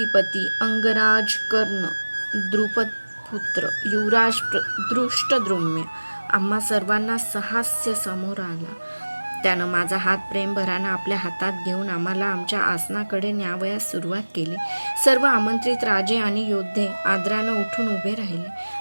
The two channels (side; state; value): both; inverted; correlation -1.00